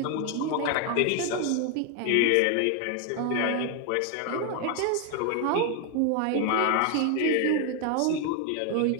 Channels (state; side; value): different; both; correlation 0.01